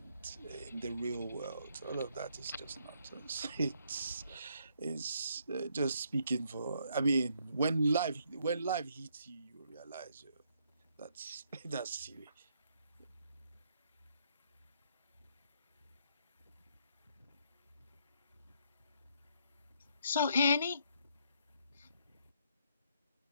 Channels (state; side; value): inverted; both; correlation -0.71